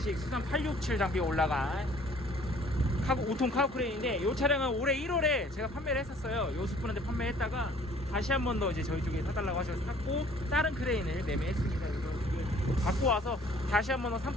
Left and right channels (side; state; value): both; normal; correlation 0.55